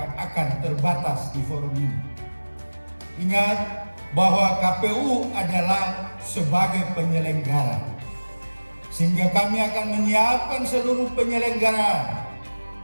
terbatas di forum ini. Ingat bahwa KPU adalah sebagai penyelenggara. Sehingga kami akan menyiapkan seluruh penyelenggaraan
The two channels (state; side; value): inverted; both; correlation -1.00